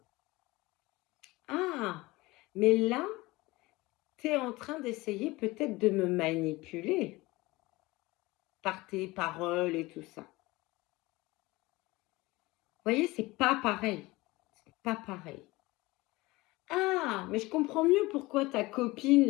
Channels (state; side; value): quieter; right; 21.0 dB